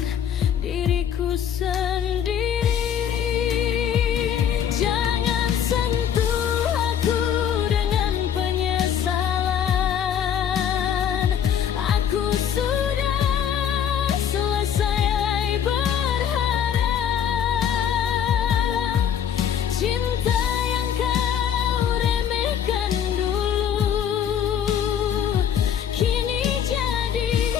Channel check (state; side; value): quieter; right; 8.9 dB